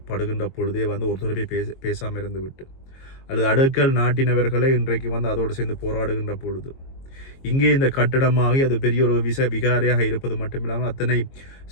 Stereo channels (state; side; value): late; right; 22 ms